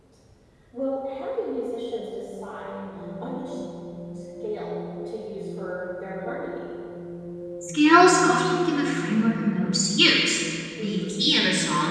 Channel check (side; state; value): both; identical; correlation 1.00